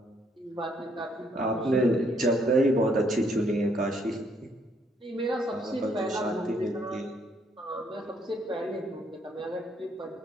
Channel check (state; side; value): normal; both; correlation 0.69